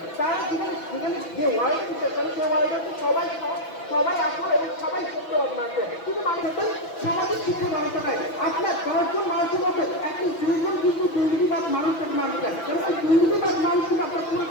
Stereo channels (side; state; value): right; late; 6.0 ms